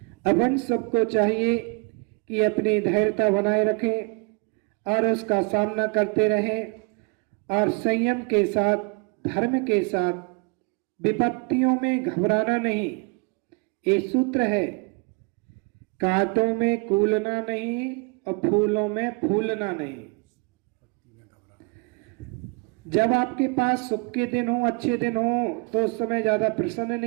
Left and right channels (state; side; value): quieter; left; 31.6 dB